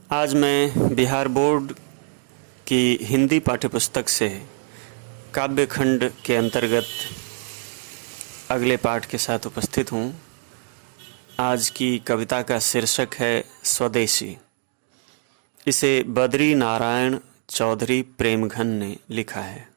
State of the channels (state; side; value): silent; left; digital silence